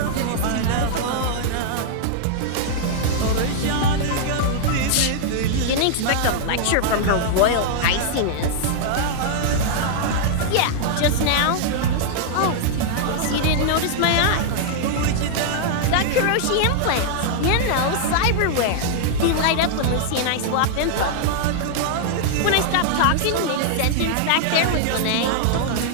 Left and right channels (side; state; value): both; different; correlation -0.01